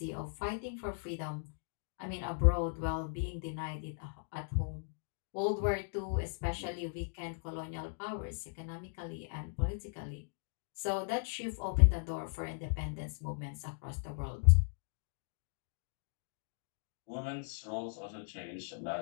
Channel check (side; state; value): right; silent; digital silence